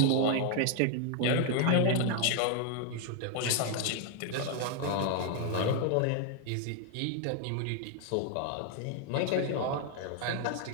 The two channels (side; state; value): both; different; correlation 0.00